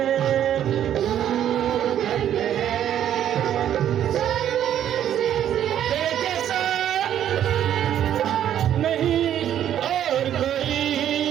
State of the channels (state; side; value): quieter; left; 10.6 dB